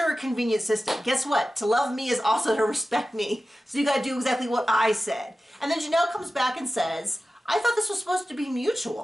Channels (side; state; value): both; normal; correlation 0.95